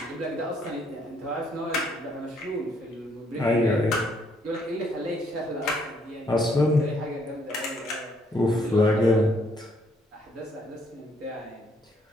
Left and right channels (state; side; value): normal; both; correlation 0.69